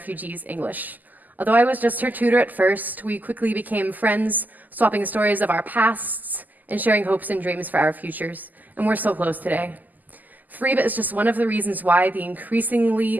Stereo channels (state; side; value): late; left; 0.083 ms